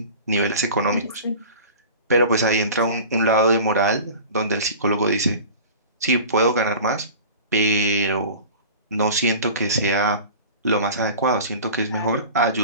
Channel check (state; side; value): inverted; both; correlation -0.38